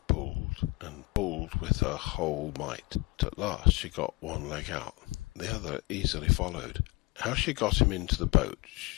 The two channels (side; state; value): right; quieter; 22.9 dB